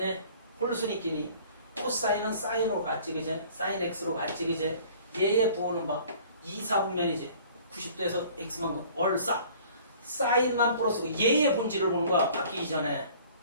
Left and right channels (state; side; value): inverted; both; correlation -0.51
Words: 홀수니끼니 코사인은 사인으로 갔지. 그제? 사인 X로 갔지. 그제? 얘의 부호는 막 2, 4분면이지. 90도에서 X만큼 얼싸. 사인만 플러스고 얘의 본질을 보는 거야. 바뀌기 전에.